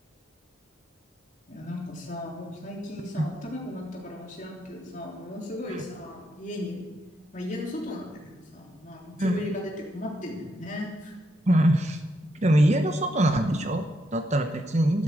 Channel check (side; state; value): both; normal; correlation 0.79